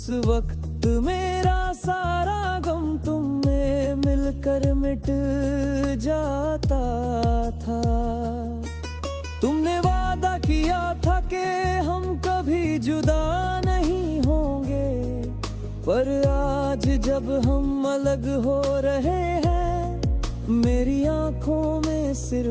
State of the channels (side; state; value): both; identical; correlation 1.00